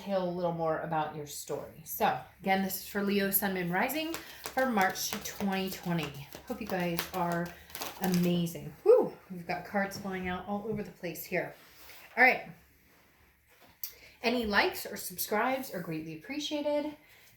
a little more about your story. So, again, this is for Leo, Sun, Moon, Rising for March 2020. Hope you guys are amazing. Whew, we've got cards flying out all over the place here. All right. Any likes or subscribes are greatly appreciated.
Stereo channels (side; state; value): both; identical; correlation 1.00